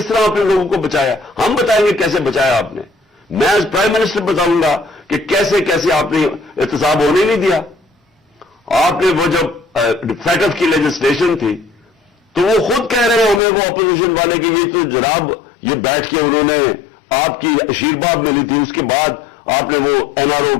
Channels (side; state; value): right; drops out; at 13.4 s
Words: طرح آپ نے لوگوں کو بچایا. ہم بتائیں گے کیسے بچایا آپ نے. میں ایز پرائم منسٹر بتاؤں گا کہ کیسے آپ نے احتساب ہونے نہیں دیا. آپ نے وہ جب فیٹف کی لیجسلیشن تھی تو وہ خود کہہ رہے ہیں ہمیں، وہ اپوزیشن والے کہ یہ تو جناب یہ بیٹھ کے انہوں نے آپ کی آشیرواد ملی تھی، اس کے بعد آپ نے وہ NRO